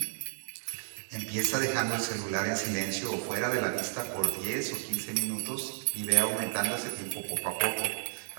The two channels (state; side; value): silent; left; 56 dB below the other